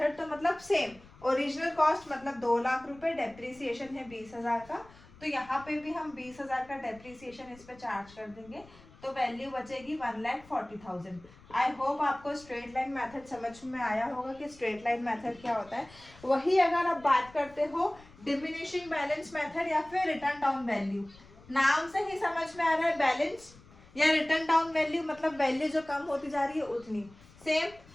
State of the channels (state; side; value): noise; left; rumble, 23 dB below the sound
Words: तो मतलब सेम ओरिजिनल कॉस्ट मतलब 2 लाख रुपए, डेप्रिसिएशन है 20,000 का, तो यहाँ पे भी हम 20,000 का डेप्रिसिएशन इस पे चार्ज कर देंगे, तो वैल्यू बचेगी 1,40,000। आई होप आपको स्ट्रेट लाइन मेथड समझ में आया होगा कि स्ट्रेट लाइन मेथड क्या होता है। वही अगर आप बात करते हो डिमिनिशिंग बैलेंस मेथड या फिर रिटर्न डाउन वैल्यू, नाम से ही समझ में आ रहा है बैलेंस या रिटर्न डाउन वैल्यू मतलब वैल्यू जो कम होती जा रही है उतनी। सेम